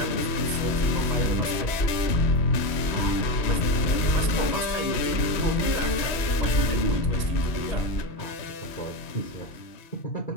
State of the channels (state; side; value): late; right; 3.1 ms